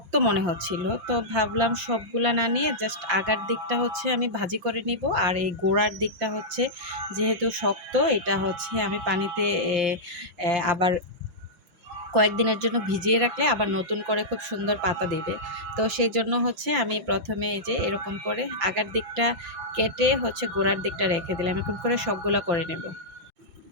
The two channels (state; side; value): late; left; 5.8 ms